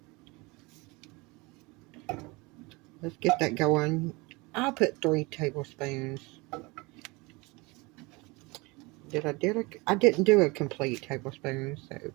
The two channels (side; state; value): left; quieter; 25.2 dB